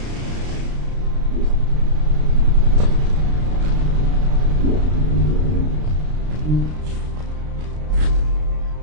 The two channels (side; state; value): left; late; 33 ms